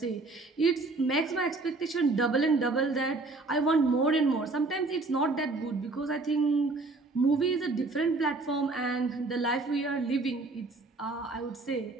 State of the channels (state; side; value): quieter; left; 3.4 dB